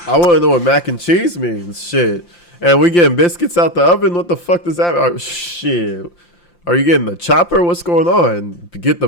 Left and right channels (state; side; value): late; right; 5.8 ms